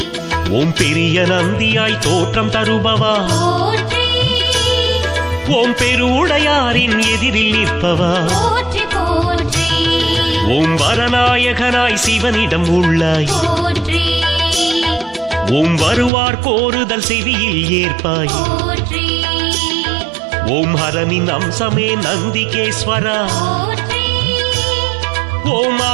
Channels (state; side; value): drops out; left; at 16.1 s